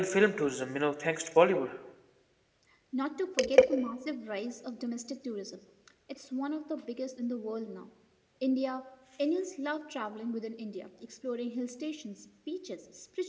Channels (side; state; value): both; identical; correlation 1.00